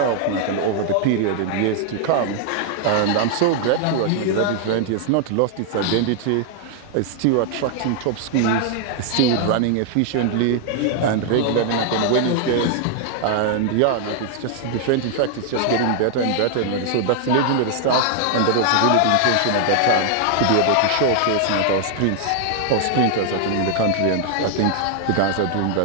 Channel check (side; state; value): both; different; correlation 0.00